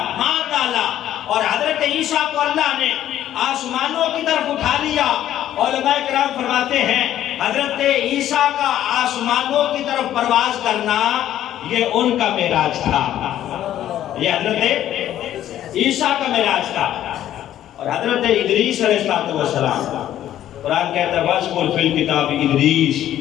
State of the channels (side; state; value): right; quieter; 12.0 dB